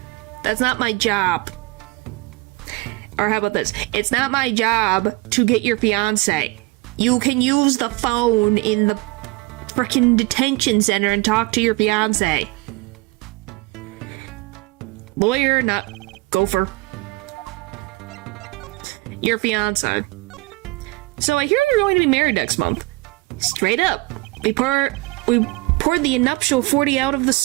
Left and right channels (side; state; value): left; quieter; 23.9 dB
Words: That's not my job. Or how about this? It's not my job to get your fiance. You can use the phone in the frickin' detention center and talk to your fiance. Lawyer, not gopher. Your fiance. So I hear you're going to be married next month. Straight up. We poured the nuptial 40 out of